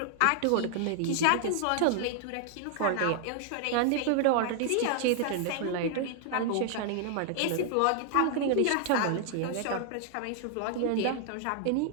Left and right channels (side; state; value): both; different; correlation 0.00